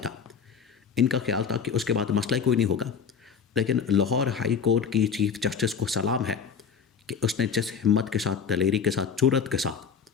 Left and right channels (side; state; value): right; quieter; 6.5 dB